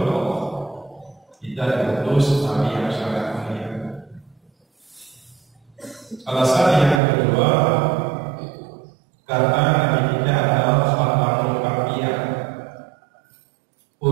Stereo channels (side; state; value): left; drops out; at 7.0 s